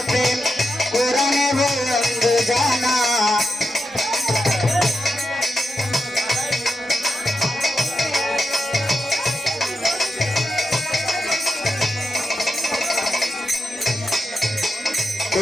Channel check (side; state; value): both; normal; correlation 0.86